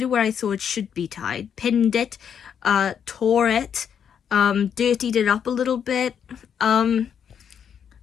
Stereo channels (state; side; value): quieter; right; 8.0 dB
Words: it where I thought it should be tied, pinned it, tore it, dirtied it up a little bit, and